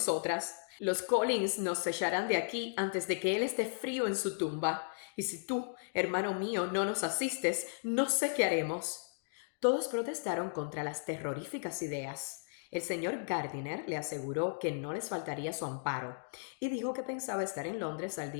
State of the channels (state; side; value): silent; right; digital silence